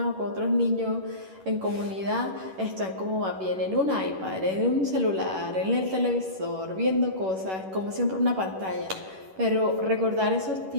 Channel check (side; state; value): left; late; 11 ms